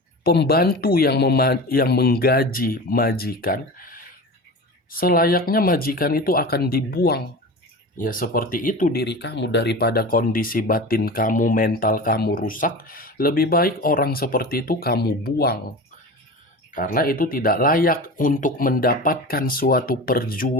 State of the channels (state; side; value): normal; both; correlation 0.31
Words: pembantu yang menggaji majikan, selayaknya majikan itu akan dibuang. Ya seperti itu diri kamu, daripada kondisi batin kamu, mental kamu rusak, lebih baik orang seperti itu kamu buang. Karena itu tidak layak untuk mendapatkan suatu